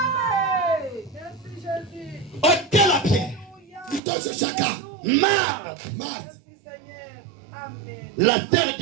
Ôtez la pierre. Marthe, la terre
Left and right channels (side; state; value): left; drops out; at 4.0 s